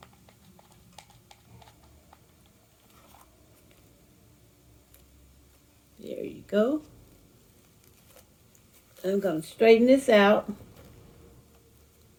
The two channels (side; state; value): both; identical; correlation 1.00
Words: There you go. I'm going to straighten this out.